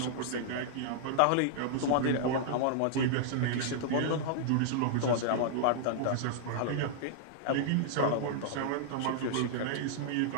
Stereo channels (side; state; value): both; different; correlation -0.01